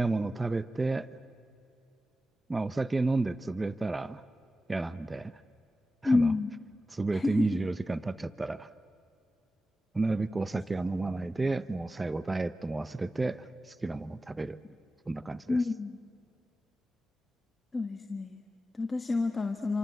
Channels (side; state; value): both; normal; correlation 0.94